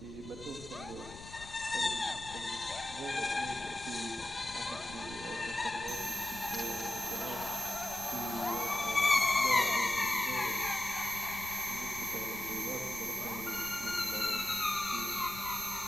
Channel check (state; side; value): noise; left; rumble, 15 dB below the sound